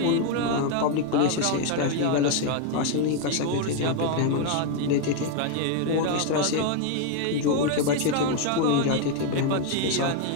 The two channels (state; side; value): different; both; correlation 0.01